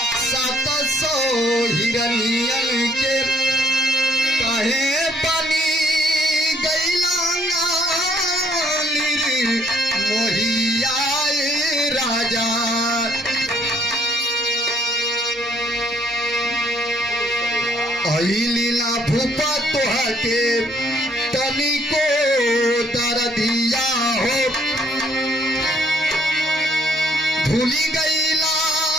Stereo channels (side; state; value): both; normal; correlation 0.64